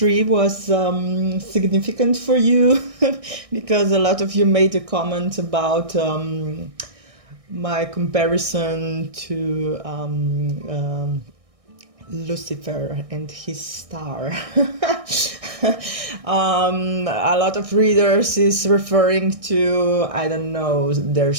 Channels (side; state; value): left; late; 1.6 ms